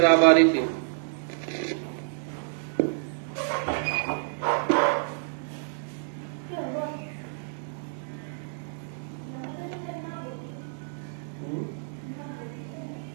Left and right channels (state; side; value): silent; left; 57 dB below the other